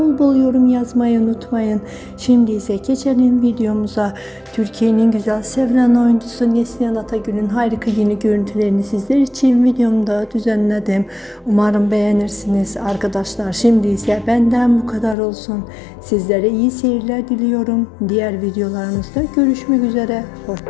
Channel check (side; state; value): right; drops out; at 15.2 s